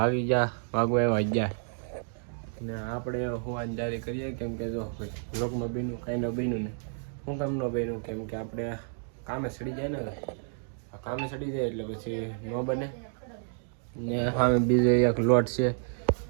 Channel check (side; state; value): left; silent; digital silence